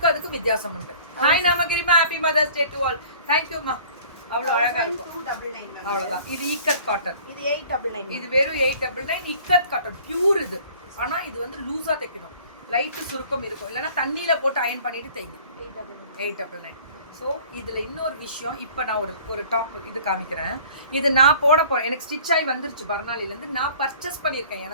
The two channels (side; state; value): both; inverted; correlation -0.49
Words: அதுக்கு வித்தியாசம் உண்டு. ஹாய் நமகிரிமா, happy mother's day to all. Thank you மா. அவ்வளவு அழகா இருக்கும். அவ்வளவுதான். இது இக்கத் காட்டன். இது 899. இது வெறும் 899 இக்கத் காட்டன் பியூர். இது ஆனா இது வந்து லூஸா தைக்கணும். லைட் சுருக்கம் இருக்கும். இல்லைன்னா தண்ணியில போட்டு அயன் பண்ணிட்டு தைங்க. 899. ஸோ இதில் இன்னொரு விஷயம், இப்போ நான் ஒரு டாப் இது காமிக்கிறேன். இது நான் போட போகிறேன். எனக்கு ஸ்டிச் ஆகி வந்துருச்சு பர்னாலிலேருந்து. நான் பர்ச்சேஸ் பண்ணியிருக்கேன்